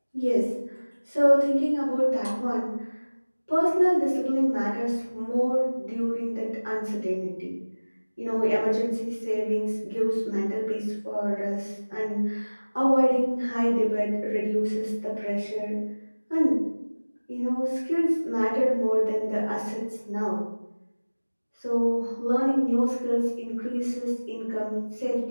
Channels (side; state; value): both; inverted; correlation -1.00